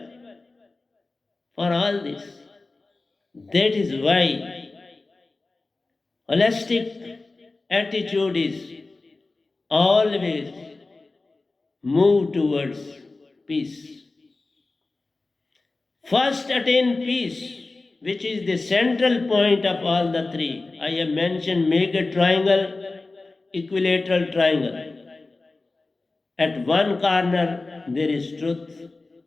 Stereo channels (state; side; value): quieter; right; 3.4 dB